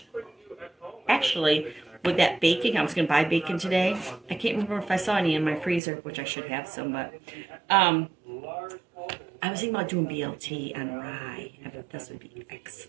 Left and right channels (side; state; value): left; drops out; at 5.8 s